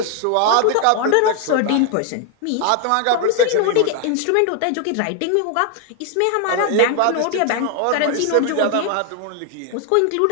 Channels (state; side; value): different; both; correlation 0.00